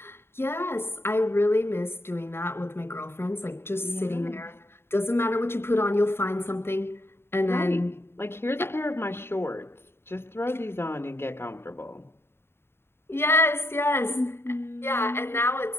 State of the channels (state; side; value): late; right; 0.11 ms